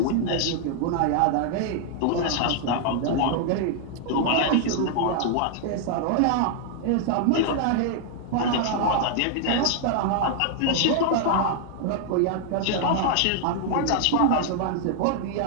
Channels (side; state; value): both; different; correlation -0.01